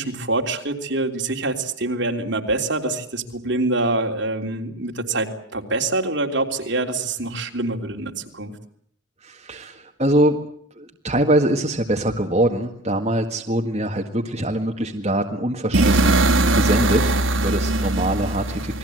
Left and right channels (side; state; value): both; normal; correlation 0.35